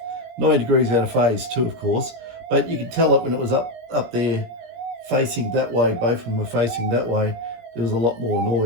9 degrees out of phase too, of course, but you could tell it when it was up there facing that way, both of them were facing that way, there was a lot more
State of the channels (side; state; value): left; late; 17 ms